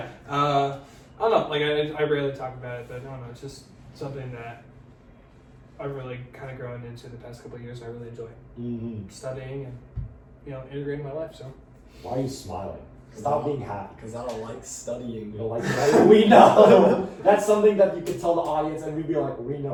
I don't know. Like, I rarely talk about it, but I don't know. It's just something that I've really kind of grown into the past couple of years. I really enjoy studying and, you know, integrating my life. So. Why are you smiling? Stop being happy. Because I don't like studying. You don't like studying? We know. That's something that you can tell the audience, and we'd be like, we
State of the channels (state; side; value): identical; both; correlation 1.00